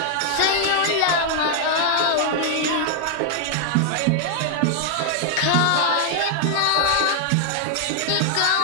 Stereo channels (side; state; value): both; different; correlation 0.00